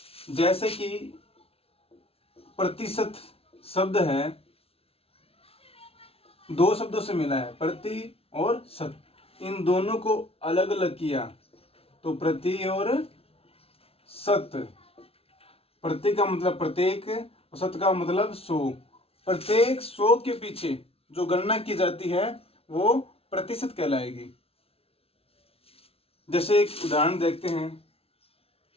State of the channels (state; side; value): late; right; 0.28 ms